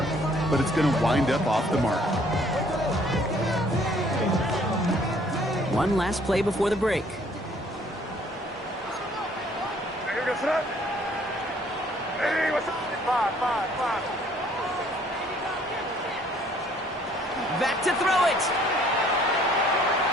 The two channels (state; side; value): normal; both; correlation 0.60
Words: but it's going to wind up off the mark. One last play before the break. Back to throw it.